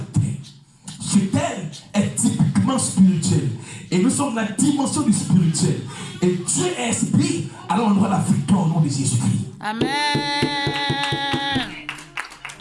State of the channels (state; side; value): identical; both; correlation 1.00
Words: ce thème est typiquement spirituel. Et nous sommes dans la dimension du spirituel. Et Dieu est esprit, alors on aura la victoire au nom de Jésus-Christ. Amen.